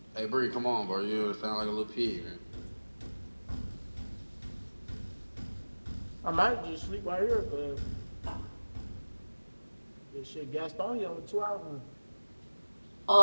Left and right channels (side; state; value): both; inverted; correlation -1.00